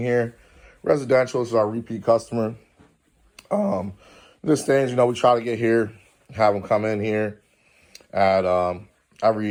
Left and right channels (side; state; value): both; identical; correlation 1.00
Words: Residential, this is our repeat customer. This things, we try to get here, have them come in here at